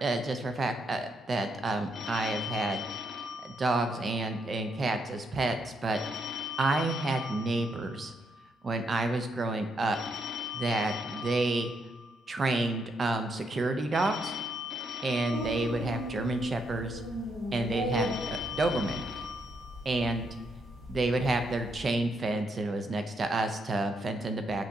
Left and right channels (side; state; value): both; normal; correlation 0.77